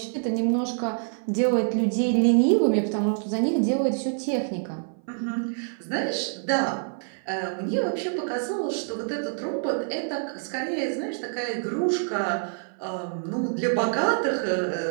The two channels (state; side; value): silent; left; 57 dB below the other